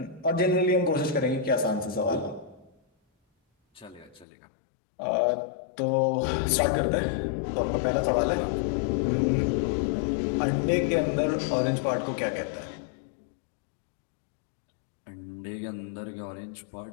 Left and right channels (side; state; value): right; drops out; at 4.2 s